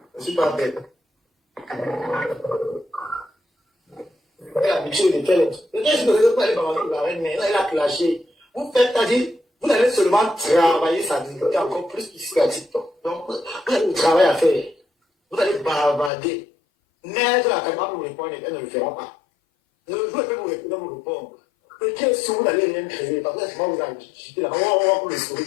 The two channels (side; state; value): right; drops out; at 16.1 s